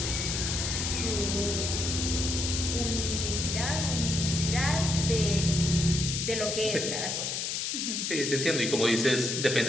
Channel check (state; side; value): noise; left; hiss, 1 dB below the sound